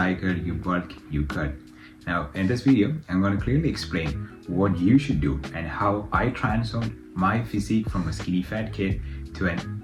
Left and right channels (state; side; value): identical; both; correlation 1.00